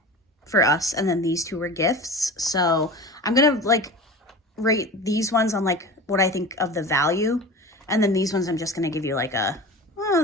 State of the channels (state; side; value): normal; both; correlation 0.33